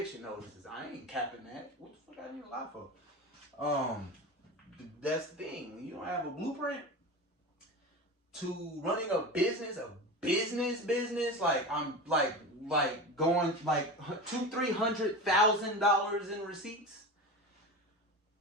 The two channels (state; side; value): normal; both; correlation 0.27